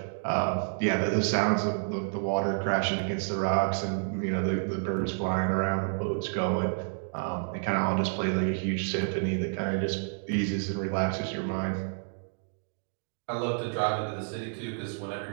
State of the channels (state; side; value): silent; left; digital silence